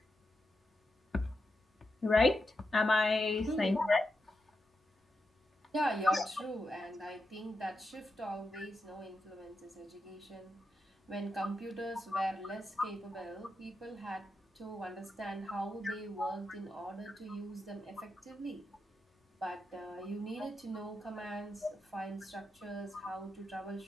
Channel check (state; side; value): normal; both; correlation 0.87